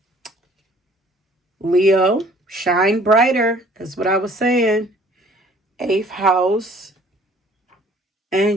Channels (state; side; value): normal; both; correlation 0.55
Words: Leo, shine brighter. That's what I was saying. 8th house